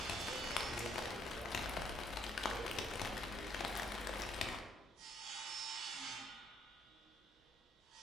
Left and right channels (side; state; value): both; normal; correlation 0.68